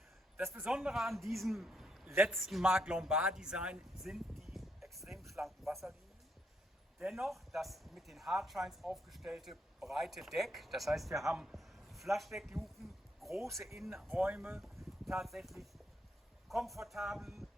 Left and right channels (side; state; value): both; normal; correlation 0.76